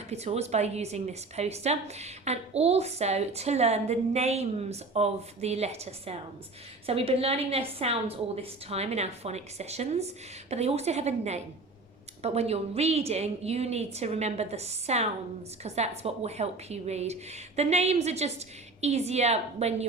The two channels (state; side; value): quieter; left; 3.4 dB